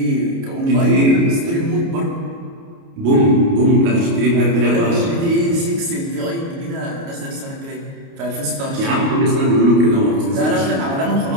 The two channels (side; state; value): left; late; 29 ms